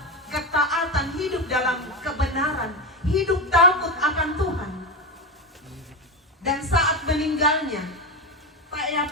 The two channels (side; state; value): both; normal; correlation 0.15